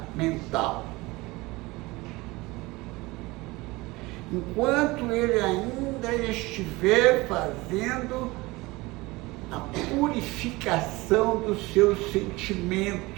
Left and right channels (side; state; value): left; quieter; 21.9 dB